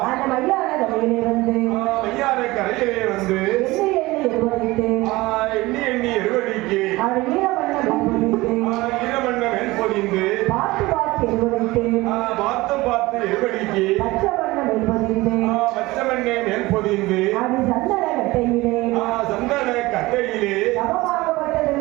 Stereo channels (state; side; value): quieter; left; 20.3 dB